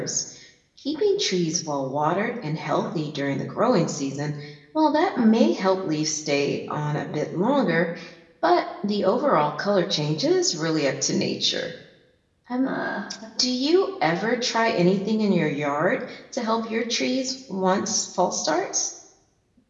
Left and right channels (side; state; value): both; identical; correlation 1.00